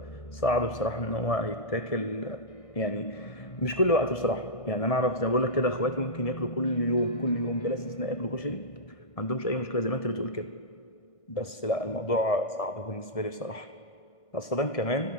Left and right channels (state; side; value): late; right; 1.6 ms